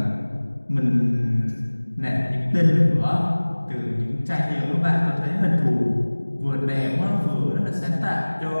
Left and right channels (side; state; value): both; inverted; correlation -1.00